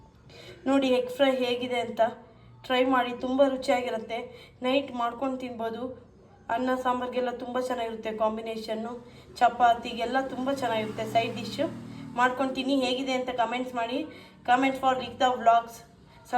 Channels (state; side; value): identical; both; correlation 1.00